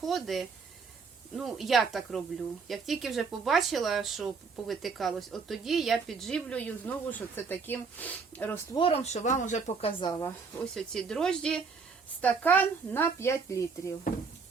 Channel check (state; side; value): quieter; left; 5.1 dB